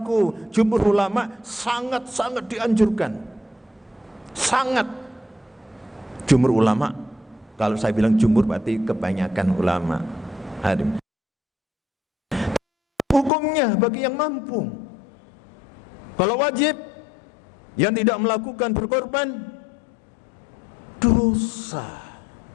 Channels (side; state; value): right; drops out; at 13.3 s